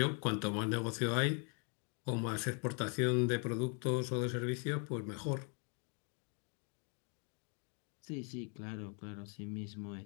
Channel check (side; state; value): right; quieter; 39.2 dB